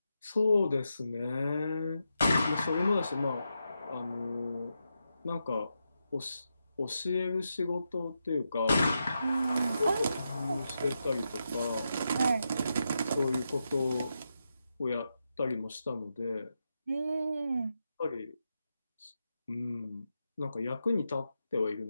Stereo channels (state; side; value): inverted; both; correlation -0.86